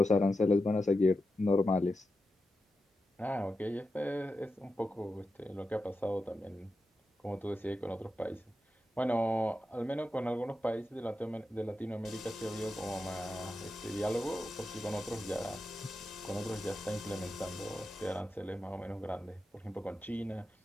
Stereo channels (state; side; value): normal; both; correlation 0.89